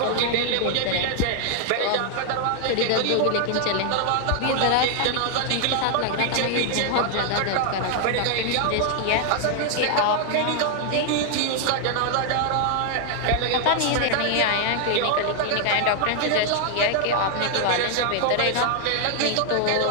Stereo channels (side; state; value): both; different; correlation 0.00